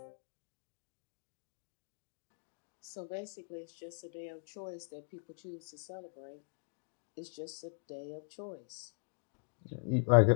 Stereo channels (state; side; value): silent; right; digital silence